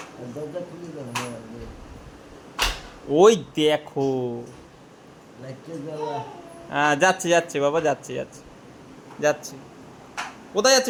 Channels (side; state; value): both; identical; correlation 1.00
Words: দরজা খুলে দাও, হ্যাঁ, ওই দেখো। লাইটটা জ্বালা। হ্যাঁ যাচ্ছে যাচ্ছে বাবা, যাচ্ছে যাচ্ছে যাচ্ছে। কোথায়